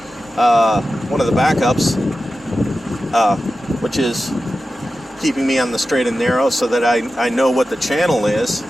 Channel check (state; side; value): normal; both; correlation 0.93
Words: one of the backups, which is keeping me on the straight and narrow so that I know what the channel is.